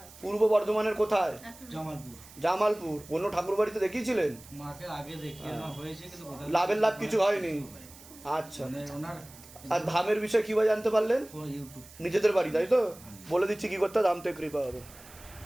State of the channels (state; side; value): noise; right; hiss, 20 dB below the sound